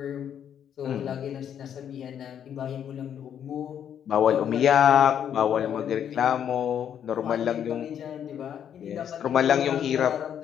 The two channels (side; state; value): right; quieter; 9.1 dB